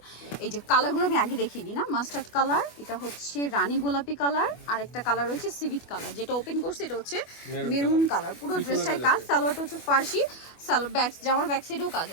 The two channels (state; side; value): late; right; 25 ms